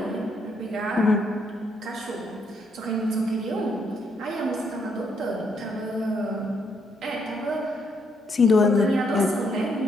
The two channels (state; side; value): normal; both; correlation 0.74